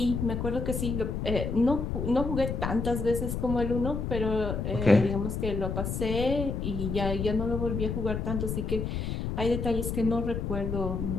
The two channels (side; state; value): left; noise; rumble, 2 dB below the sound